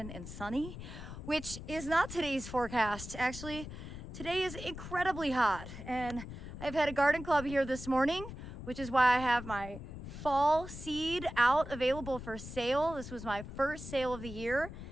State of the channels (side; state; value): left; noise; rumble, 10 dB below the sound